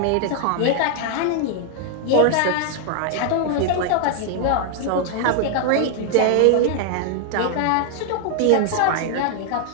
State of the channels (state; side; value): different; both; correlation 0.00